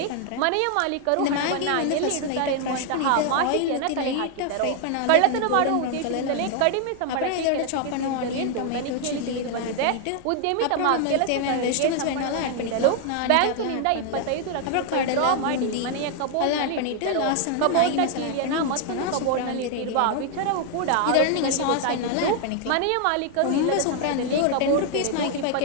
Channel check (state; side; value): different; both; correlation 0.00